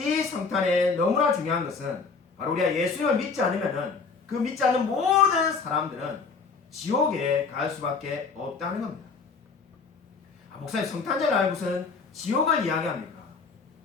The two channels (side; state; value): right; quieter; 4.9 dB